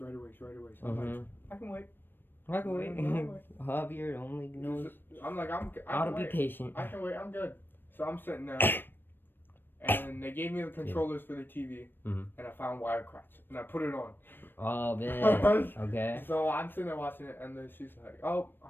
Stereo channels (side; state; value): right; late; 0.096 ms